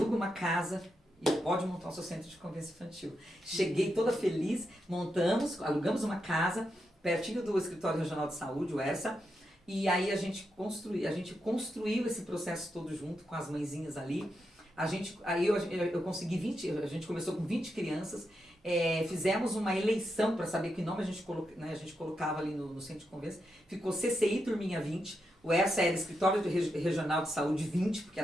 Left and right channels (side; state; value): both; normal; correlation 0.85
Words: uma casa e pode montar o seu centro de convivência infantil. Cheguei toda feliz, alugamos uma casa, pertinho do Escritório Regional de Saúde, o ERSA, e aí a gente construiu esse processo todo junto com as mãezinhas ali. Aí eu consegui 20, a gente começou com 20 crianças, fizemos uma eleição para saber que nome a gente colocava ali no centro de convivência, ficou CCI Turminha 20, o ERSA era Escritório Regional de Saúde 20, porque